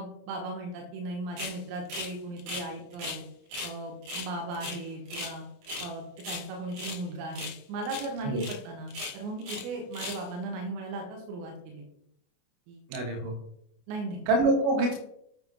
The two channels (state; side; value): late; left; 28 ms